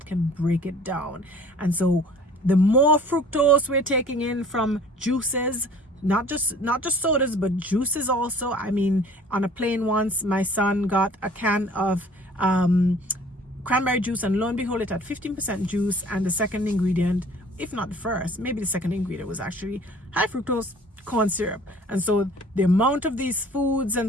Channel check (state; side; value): normal; both; correlation 0.50